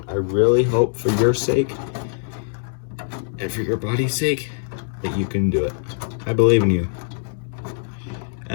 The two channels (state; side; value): silent; right; digital silence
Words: I really hope for your sake and for your body's sake that you can do it. I believe in you.